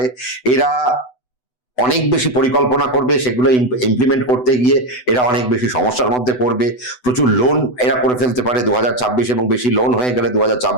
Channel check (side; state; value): right; late; 8.0 ms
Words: এরা অনেক বেশি পরিকল্পনা করবে, সেগুলো ইমপ্লিমেন্ট করতে গিয়ে এরা অনেক বেশি সমস্যার মধ্যে পড়বে। প্রচুর লোন এরা করে ফেলতে পারে 2026, এবং বেশি লোন হয়ে গেলে